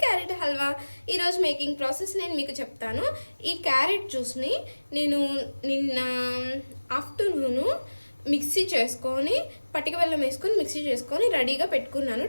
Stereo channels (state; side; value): inverted; both; correlation -1.00